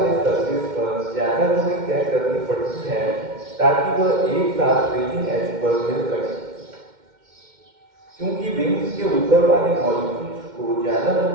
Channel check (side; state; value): left; late; 2.1 ms